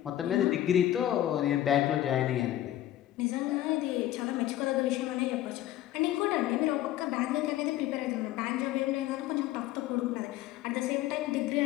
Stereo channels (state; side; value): quieter; right; 13.4 dB